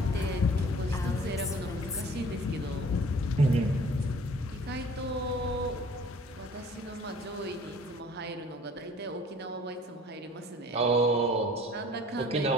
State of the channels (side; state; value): both; normal; correlation 0.51